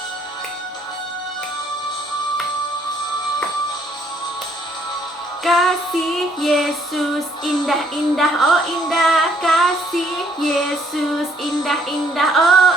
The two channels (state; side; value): normal; both; correlation 0.66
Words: Kasih Yesus indah-indah, oh indah. Kasih Yesus indah-indah, oh